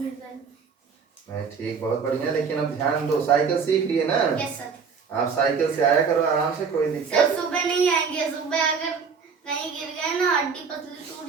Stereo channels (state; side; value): quieter; left; 5.8 dB